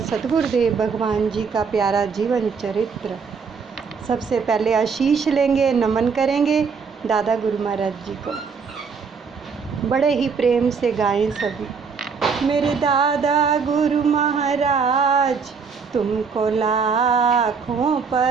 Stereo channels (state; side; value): quieter; left; 5.6 dB